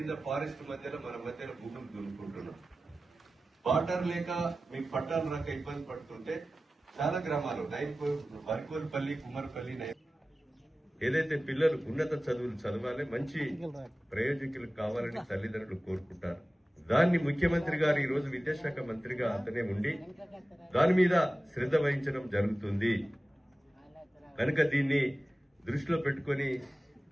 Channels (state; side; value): normal; both; correlation 0.96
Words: ఫారెస్ట్ మధ్యలో మన మధ్యలో భూములు దున్నుకుంటున్నాం. వాటర్ లేక మీకు పట్టాలు రాక ఇబ్బంది పడుతుంటే చాలా గ్రామాలు వరికోల్పల్లి, కుమ్మరపల్లి, ఏదైతే పిల్లలు ఉన్నత చదువులు చదవాలి, మంచి ప్రయోజకులు కావాలని తల్లిదండ్రులు కోరుకుంటారు. దాన్ని ముఖ్యమంత్రి గారు ఈ రోజు విద్యాశాఖ మంత్రిగా అతనే ఉండి దాని మీద శ్రద్ధ వహించడం జరుగుతుంది. కనుక దీన్ని దృష్టిలో పెట్టుకుని